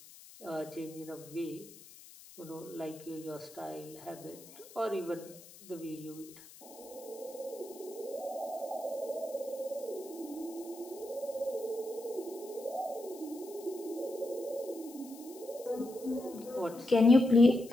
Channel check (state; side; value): noise; left; hiss, 19 dB below the sound